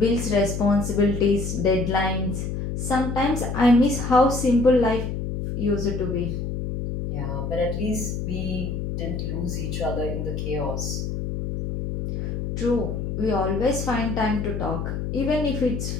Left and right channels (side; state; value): left; noise; hum, 3 dB below the sound